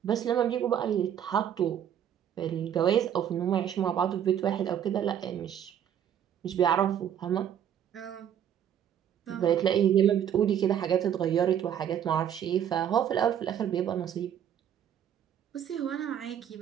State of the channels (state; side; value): quieter; left; 9.5 dB